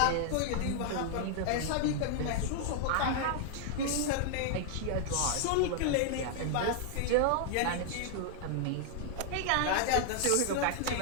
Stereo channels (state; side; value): different; both; correlation 0.00